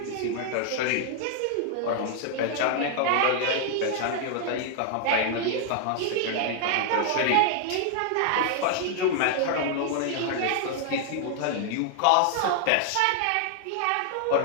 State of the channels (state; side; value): different; both; correlation 0.00